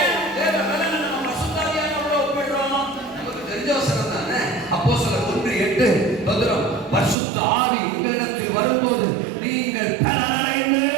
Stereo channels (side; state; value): left; drops out; at 7.2 s